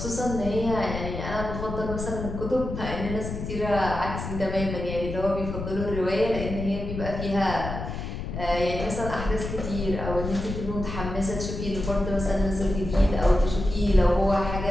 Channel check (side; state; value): left; noise; rumble, 6 dB below the sound